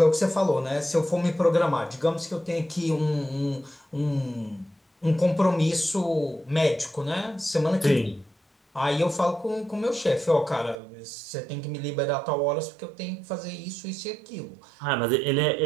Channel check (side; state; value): left; drops out; at 10.8 s